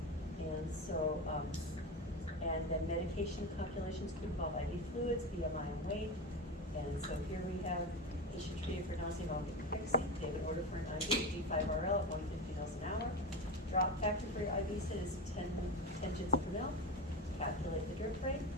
And so, and then medication calculations could involve IV fluids, BMI and weight. And so here we have patient treated for nausea, vomiting, and pregnancy. They have an order for an IV, D5RL at 150 mils an hour. Drop factor for your IV sit is 10 gins per mil. Calculate the drip rate.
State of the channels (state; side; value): normal; both; correlation 0.21